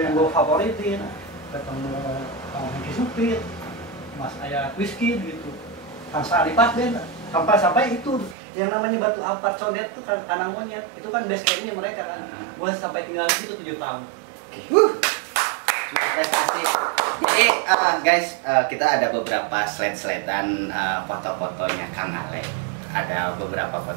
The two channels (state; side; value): drops out; left; at 8.3 s